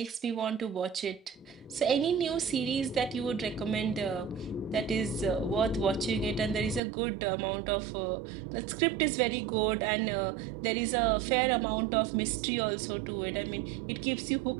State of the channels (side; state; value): left; drops out; at 6.8 s